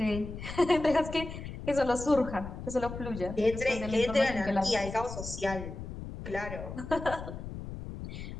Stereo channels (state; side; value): noise; left; rumble, 9 dB below the sound